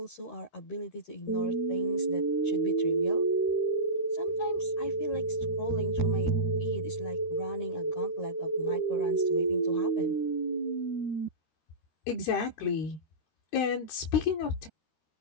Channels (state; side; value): late; right; 13 ms